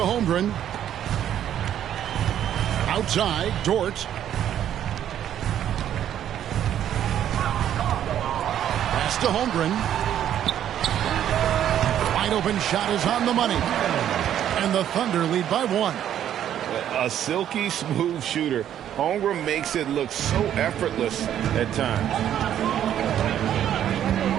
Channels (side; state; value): left; quieter; 10.5 dB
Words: Outside, Dort. Pass to Holmgren. Wide open shot is on the money. And the Thunder lead by 1. A silky smooth shooter. Holmgren makes it look so effortless at times.